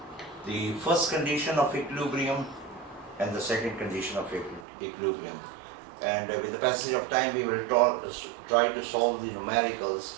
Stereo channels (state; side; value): drops out; left; at 4.7 s